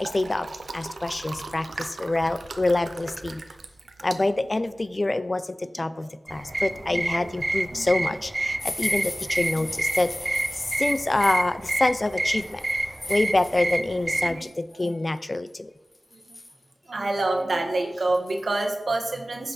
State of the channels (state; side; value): normal; both; correlation 0.97